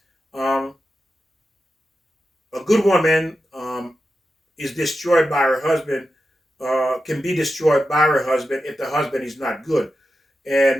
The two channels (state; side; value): normal; both; correlation 0.90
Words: is destroyed by her husband. Can be destroyed by her husband if the husband is not good,